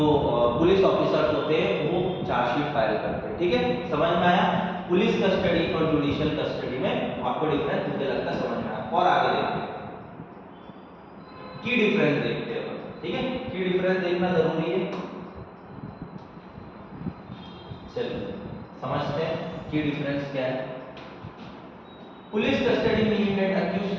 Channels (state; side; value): identical; both; correlation 1.00